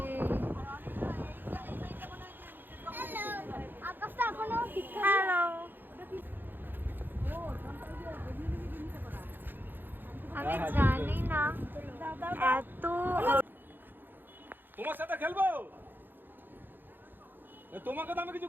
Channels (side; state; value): left; late; 0.094 ms